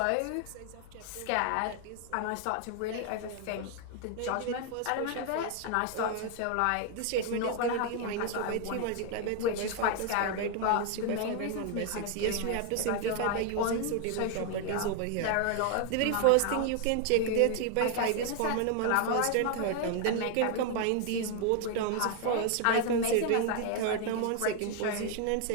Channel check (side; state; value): both; different; correlation 0.00